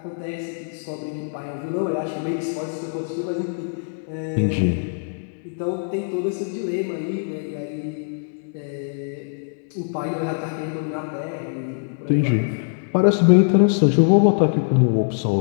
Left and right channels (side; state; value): right; silent; digital silence